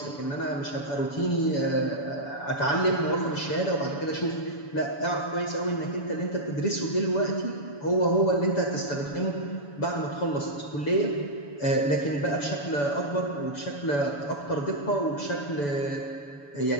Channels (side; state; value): right; late; 7.0 ms